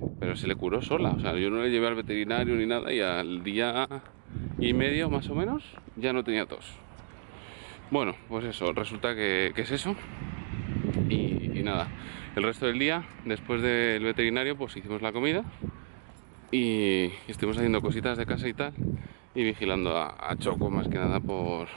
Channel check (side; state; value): left; silent; digital silence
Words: pero se le curó sola, o sea, yo no le llevé al veterinario ni nada y al día y medio más o menos ya no tenía tos. Bueno, pues eso, resulta que es eso. Y nada, el resto del día, después del veterinario, pues hicimos la comida y estuvimos haciendo cositas de casa y tal, y vigilando a Choco más que nada por